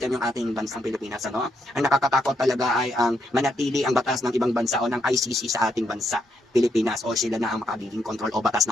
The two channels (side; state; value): both; normal; correlation 0.77